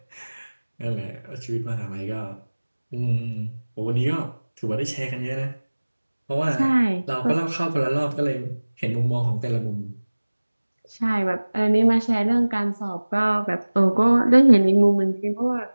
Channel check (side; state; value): both; inverted; correlation -1.00